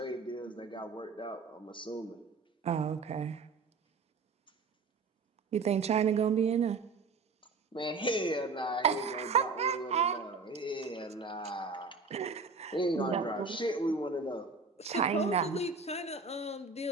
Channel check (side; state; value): left; quieter; 4.4 dB